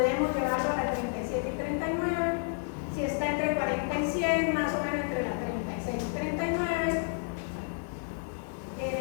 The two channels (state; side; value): silent; right; 55 dB below the other